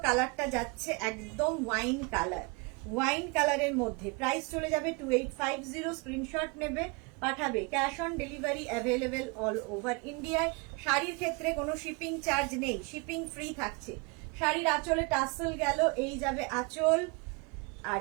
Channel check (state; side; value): quieter; left; 30.1 dB